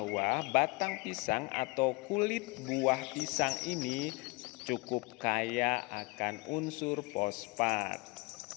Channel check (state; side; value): quieter; right; 26.2 dB